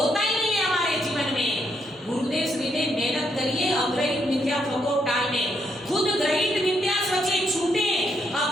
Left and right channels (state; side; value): normal; both; correlation 0.76